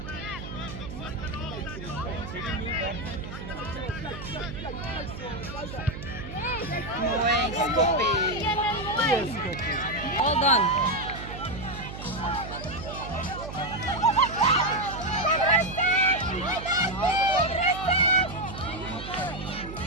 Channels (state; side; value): noise; right; hum, 10 dB below the sound